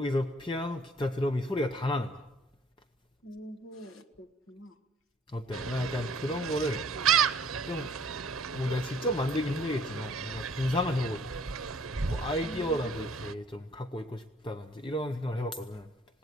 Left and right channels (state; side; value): normal; both; correlation 0.58